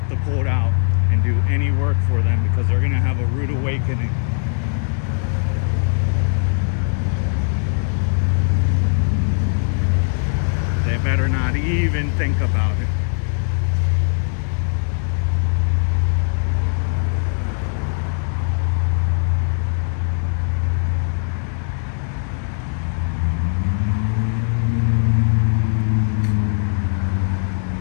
the cult out and do any work for them, because they're gonna have a rude awakening. They better not even think about it.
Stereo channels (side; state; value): right; silent; 64 dB below the other